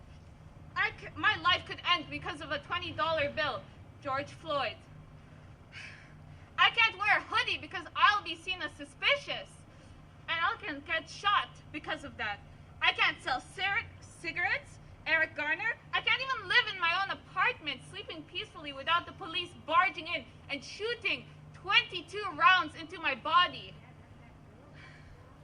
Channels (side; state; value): both; identical; correlation 1.00